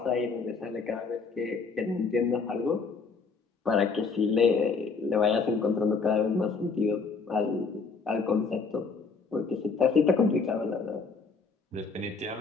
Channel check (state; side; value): quieter; right; 4.8 dB